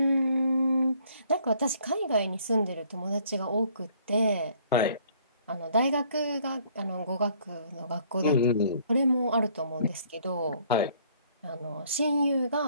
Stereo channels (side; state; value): both; inverted; correlation -0.61